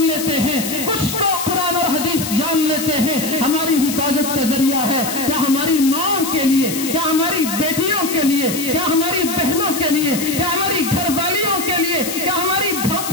ہیں، کچھ تو قرآن اور حدیث جان لیتے ہیں، ہماری حفاظت کا ذریعہ ہے۔ کیا ہماری ماں کے لیے، کیا ہماری بیٹیوں کے لیے، کیا ہماری بہنوں کے لیے، کیا ہماری گھر والیوں کے لیے، کیا ہماری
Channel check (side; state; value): left; noise; hiss, 6 dB below the sound